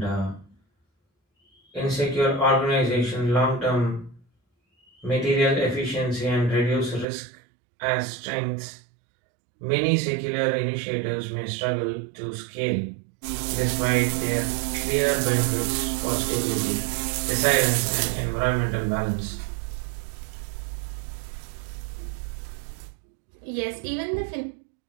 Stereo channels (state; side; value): drops out; left; at 7.1 s